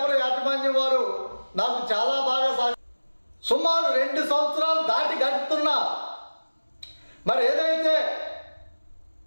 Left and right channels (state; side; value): inverted; both; correlation -1.00